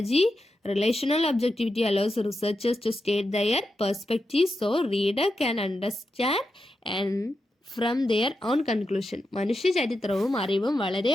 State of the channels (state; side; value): normal; both; correlation 0.88